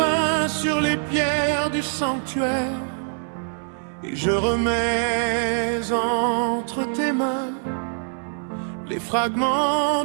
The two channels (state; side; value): silent; left; 62 dB below the other